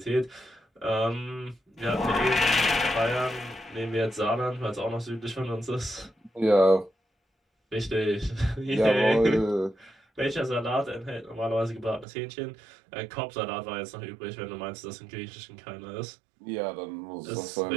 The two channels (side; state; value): left; drops out; at 12.1 s